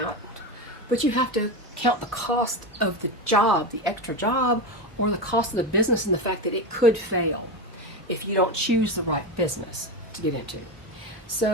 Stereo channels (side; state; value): both; normal; correlation 0.17